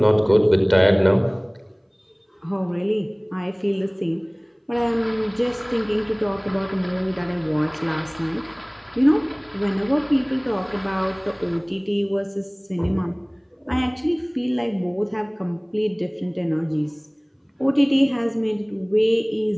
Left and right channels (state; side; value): identical; both; correlation 1.00